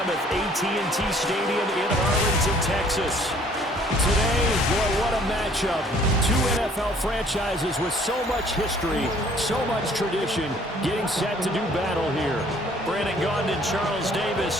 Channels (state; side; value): normal; both; correlation 0.57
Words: AT&T Stadium in Arlington, Texas. Today, boy, what a matchup. Two NFL franchises with so much history, so much tradition, getting set to do battle here. Brandon Gaudin and Charles